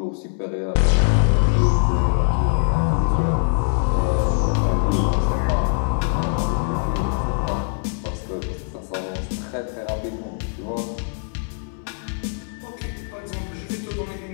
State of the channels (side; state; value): right; silent; 64 dB below the other